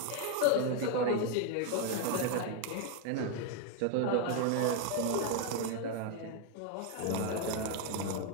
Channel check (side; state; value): both; different; correlation 0.01